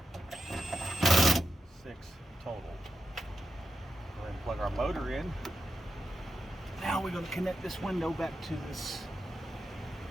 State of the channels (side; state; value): both; normal; correlation 0.88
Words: 6 total. Go ahead and plug our motor in. Now we're going to connect this window back to this